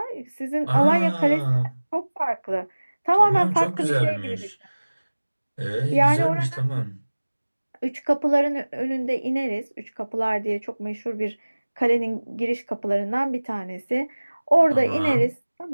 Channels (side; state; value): both; inverted; correlation -1.00